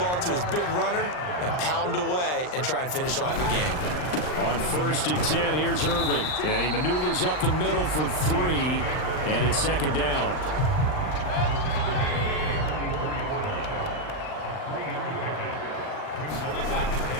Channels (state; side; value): late; right; 39 ms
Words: to his big runner and pound away and try and finish off the game. On 1st and 10, here's Irving. And he maneuvers up the middle for 3, and it's 2nd down.